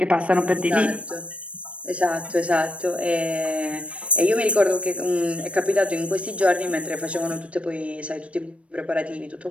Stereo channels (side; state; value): left; late; 0.062 ms